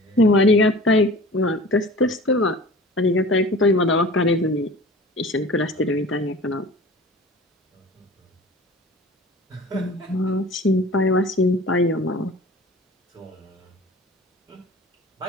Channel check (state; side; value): normal; both; correlation 0.41